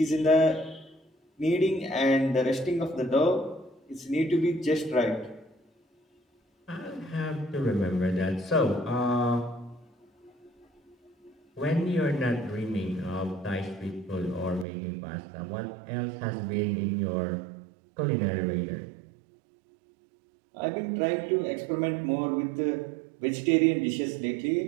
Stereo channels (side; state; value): left; drops out; at 14.7 s